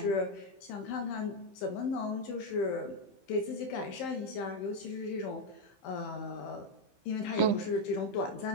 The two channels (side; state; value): right; late; 15 ms